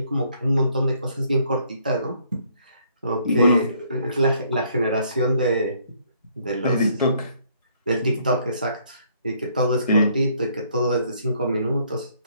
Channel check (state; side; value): inverted; both; correlation -0.66